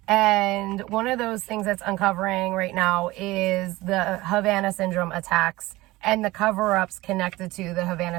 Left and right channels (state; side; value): quieter; left; 19.4 dB